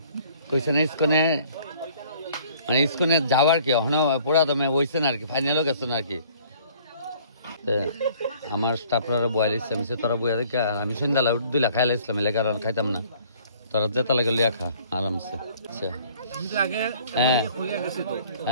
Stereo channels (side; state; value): both; inverted; correlation -0.56